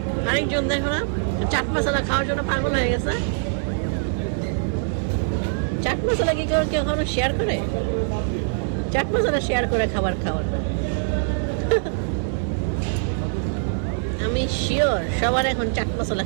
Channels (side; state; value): left; silent; 63 dB below the other